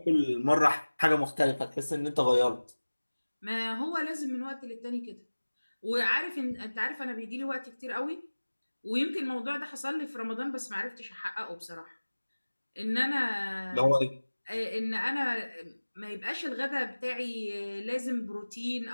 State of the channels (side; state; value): both; inverted; correlation -1.00